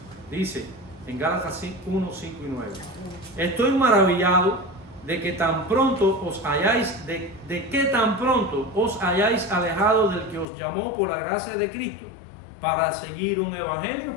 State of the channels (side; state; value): right; drops out; at 10.5 s